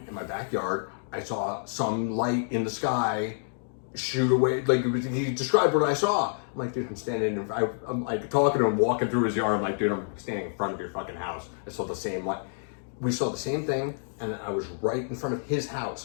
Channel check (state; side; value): silent; right; digital silence